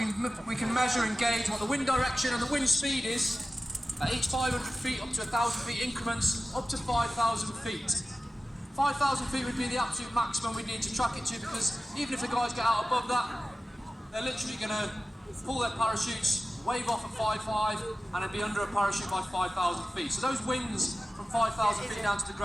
can measure and gauge what the wind direction and the wind speed is at each 500 feet up to 1,000 feet increments up to 5,000 feet. 5,000 feet would be the absolute maximum we need to track it to, because even if the guys get out above that, they're literally going to pull their parachutes, wave off at 5.5 and then be under a parachute by 5,000 feet. So those winds from 5,000 feet down to the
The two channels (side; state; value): both; normal; correlation 0.95